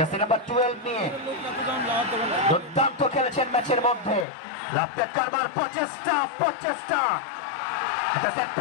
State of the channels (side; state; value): right; drops out; at 4.2 s